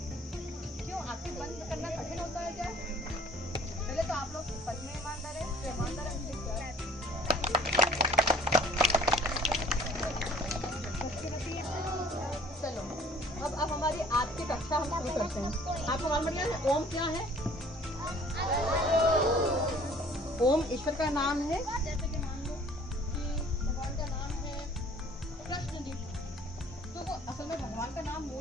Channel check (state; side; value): normal; both; correlation 0.53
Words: बंद करना कठिन होता है क्या? पहले तो आप लोग सच में ईमानदार है, तो ईमानदार चलो अब हमारी आज की कक्षा हम शुरू करते हैं। आपको मालूम है ओम क्या है? ओम ईश्वर का नाम है। जैसे कि मान लो कि भगवान का नाम है कृष्ण जी, तो वो असल में भगवान का नाम